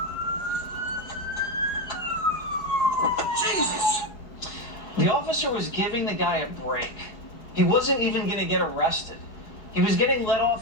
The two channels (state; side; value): late; right; 4.8 ms